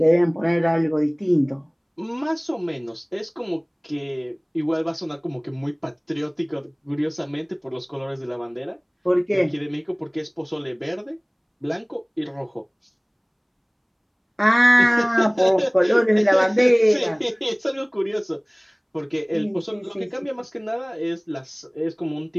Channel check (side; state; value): both; identical; correlation 1.00